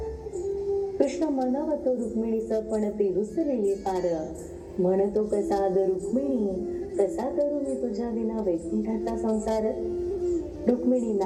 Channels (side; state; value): both; identical; correlation 1.00